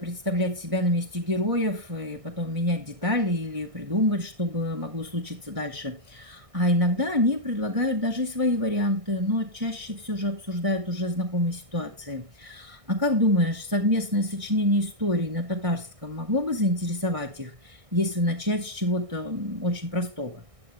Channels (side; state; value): left; late; 1.6 ms